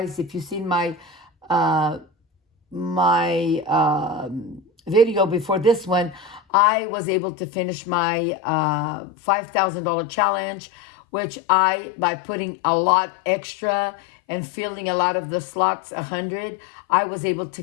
if you've seen my video before this one, I was able to finish my $5,000 challenge, which by putting a lot extra and filling a lot of the slots 100, I was able to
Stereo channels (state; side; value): drops out; right; at 6.4 s